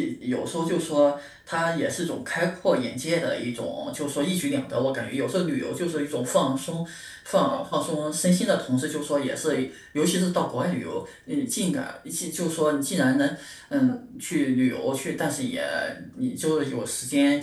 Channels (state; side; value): identical; both; correlation 1.00